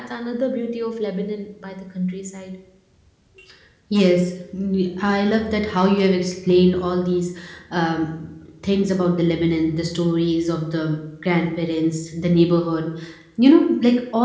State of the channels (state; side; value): identical; both; correlation 1.00